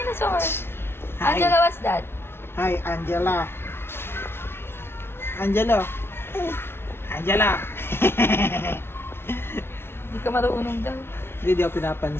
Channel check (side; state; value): right; late; 0.12 ms